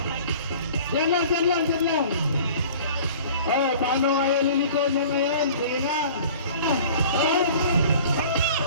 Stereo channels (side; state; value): both; inverted; correlation -0.46